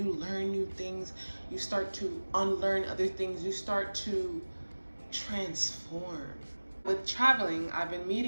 learn new things. You start to unlearn other things. You start to transform. With traveling, I've been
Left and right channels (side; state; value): both; inverted; correlation -1.00